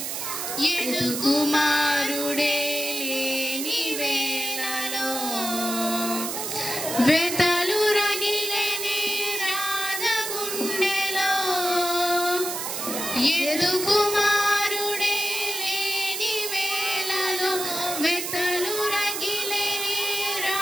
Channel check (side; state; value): right; noise; hiss, 4 dB below the sound